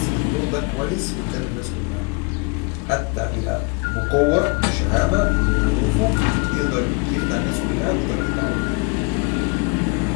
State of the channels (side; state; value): right; quieter; 32.3 dB